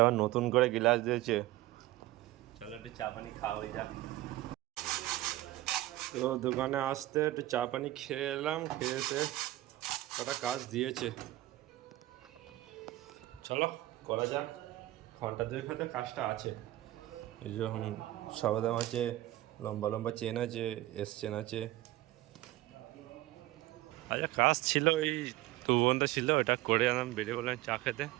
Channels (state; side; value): quieter; left; 16.6 dB